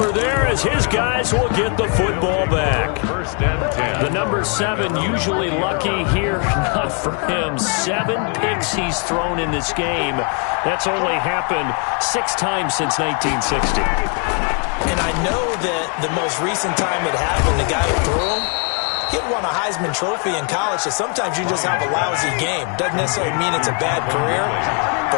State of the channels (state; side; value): quieter; right; 39.1 dB